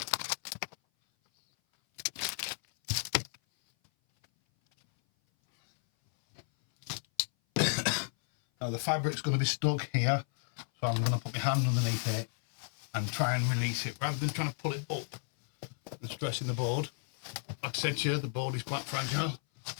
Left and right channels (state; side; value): silent; right; 56 dB below the other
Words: Now the fabric's going to be stuck here, so I'm going to put my hand underneath it and try and release it rather than trying to pull it up and stressing the board. Like I said to you, the board is quite fragile.